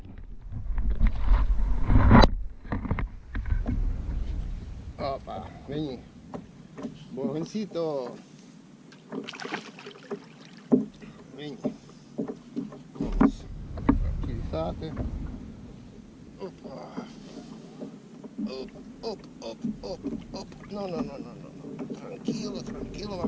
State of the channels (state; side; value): identical; both; correlation 1.00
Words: Opa, vení. Bojoncito. Vení. Vamos. Tranquilízate. Opa. Op. No. Tranquilo,